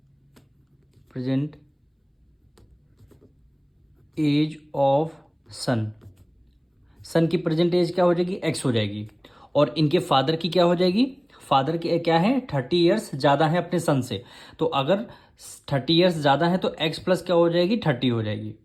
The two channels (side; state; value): both; identical; correlation 1.00